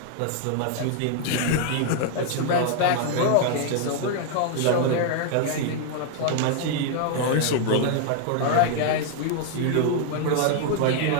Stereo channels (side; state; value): both; different; correlation 0.00